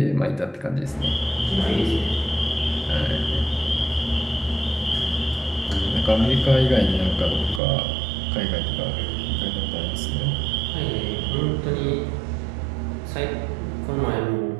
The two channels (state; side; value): drops out; left; at 7.6 s